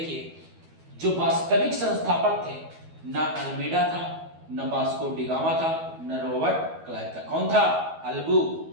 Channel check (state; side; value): late; left; 12 ms